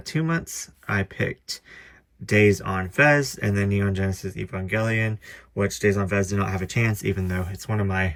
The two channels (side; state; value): both; identical; correlation 1.00